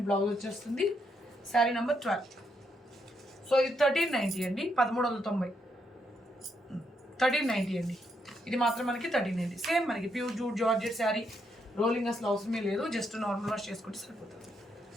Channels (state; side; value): normal; both; correlation 0.78